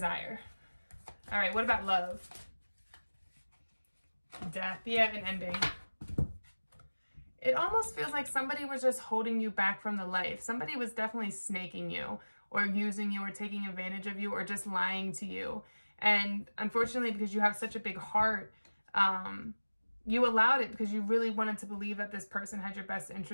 All right, what about love? Death, yeah, and ending. It almost feels like somebody was just holding you back from the life. Somebody was definitely snaking you or using you or taking advantage of you or just lying to you. And unfortunately, because you have such a big heart, you allowed it because you really wanted to believe that this person had your best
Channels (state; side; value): inverted; both; correlation -1.00